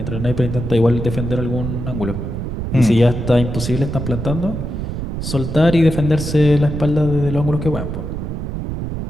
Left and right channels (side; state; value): right; noise; rumble, 5 dB below the sound